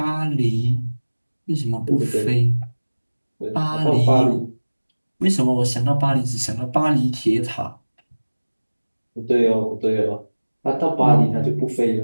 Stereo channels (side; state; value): both; inverted; correlation -1.00